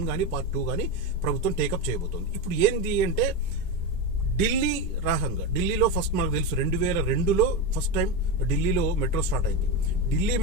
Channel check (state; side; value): normal; both; correlation 0.14